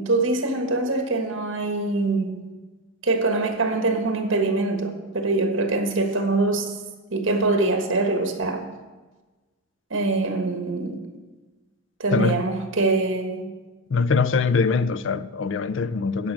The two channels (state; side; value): normal; both; correlation 0.13